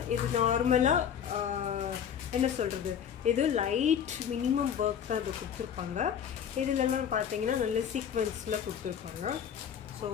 இது நார்மலாக என்ன சொல்கிறது, இது லைட் மினிமம் ஒர்க் தான் இது கொடுத்துருப்பாங்க. இதுலலாம் பார்த்தீங்கன்னா நல்ல சீக்வன்ஸில் கொடுத்துருப்பாங்க. ஸோ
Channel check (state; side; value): quieter; right; 8.5 dB